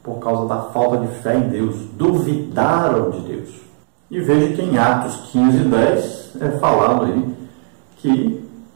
por causa da falta de fé em Deus, duvidaram de Deus. E veja que em Atos 15:10 é falado aí que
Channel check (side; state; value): left; silent; digital silence